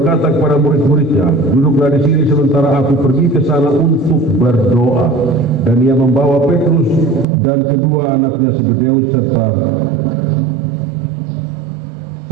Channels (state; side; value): drops out; left; at 7.2 s